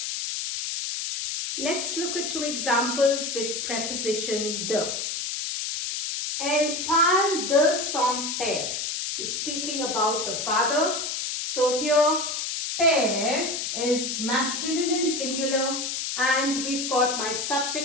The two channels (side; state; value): left; noise; hiss, 3 dB below the sound